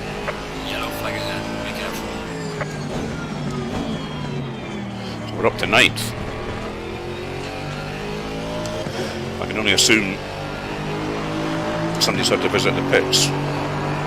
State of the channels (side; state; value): both; identical; correlation 1.00